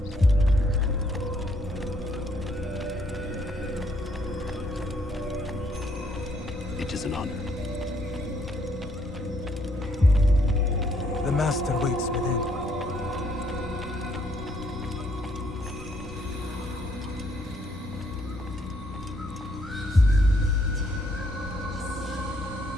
It is an honor. The Master waits within.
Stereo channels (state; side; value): normal; both; correlation 0.69